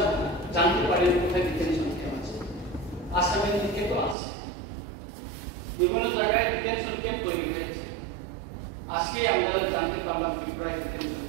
জানতে পারি কোথায় ডিটেনশন ক্যাম্প আছে। আসামের দিকে তো আছে, বিভিন্ন জায়গায় ডিটেনশন ক্যাম্প তৈরি হয়েছে। আজকে আমরা জানতে পারলাম ত্রিপুরায় ডিটেনশন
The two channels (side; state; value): left; drops out; at 4.2 s